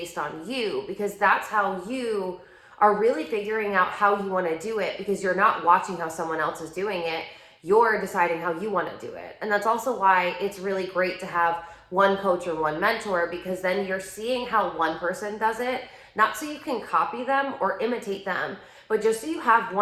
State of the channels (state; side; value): identical; both; correlation 1.00